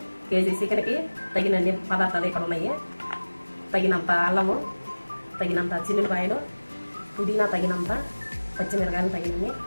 కేజీ చికెన్కి తగినన్ని పదార్థాలు ఇక్కడ ఉన్నాయి. తగినంత అల్లము, తగినంత చిన్నులపాయలు, పుదీనా తగినంత, పచ్చిమిరకాయలు తగినన్ని,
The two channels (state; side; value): inverted; both; correlation -1.00